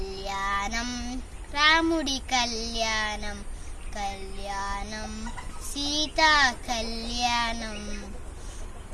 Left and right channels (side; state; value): both; identical; correlation 1.00